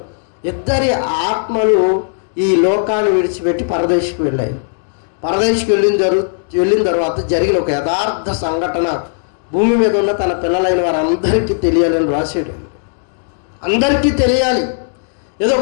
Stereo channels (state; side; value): silent; right; digital silence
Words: ఇద్దరి ఆత్మలు ఈ లోకాన్ని విడిచిపెట్టి పరదేశికి వెళ్ళాయి. పరదేశికి వెళ్ళిన తర్వాత జరిగిన ఒక యథార్థ సంఘటన భూమి మీద ఉన్న తన పిల్లలైన వారందరికీ తెలియాలని రాశాడు. అందరికీ తెలియాలి. ఏదో